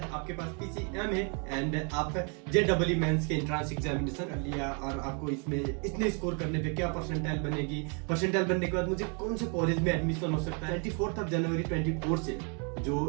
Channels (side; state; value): left; quieter; 37.3 dB